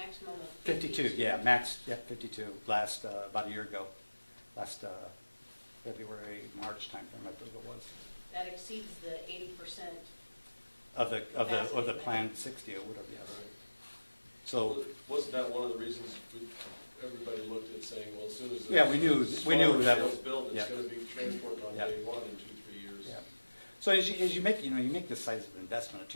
of 52, yeah, 52 last, about a year ago, last February, March timeframe, I believe it was, That exceeds the 80%. of the planned 60 or whatever, yes. Right. So, Wasn't that one of the reasons everybody looked at saying, well, as soon as yeah, we knew that was built, yeah. it's gonna be transported on Yeah. day one in 2-3 years. Yeah. So as you make, you know, you make this size of investment, a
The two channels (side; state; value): both; inverted; correlation -1.00